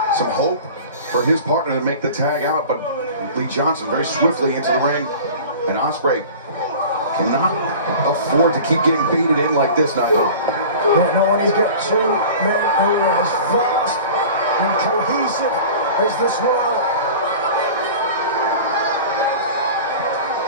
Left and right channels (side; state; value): both; inverted; correlation -0.39